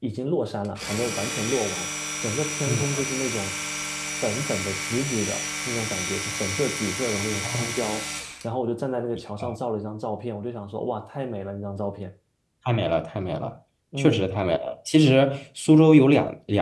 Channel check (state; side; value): identical; both; correlation 1.00